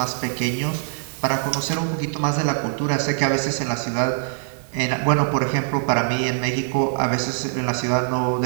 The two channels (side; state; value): left; silent; digital silence